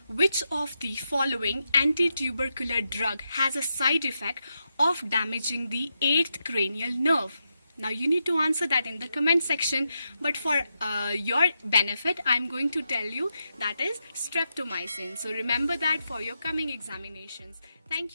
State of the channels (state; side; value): inverted; both; correlation -0.85